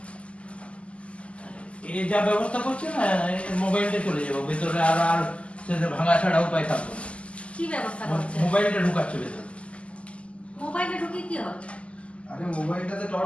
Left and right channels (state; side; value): late; right; 0.058 ms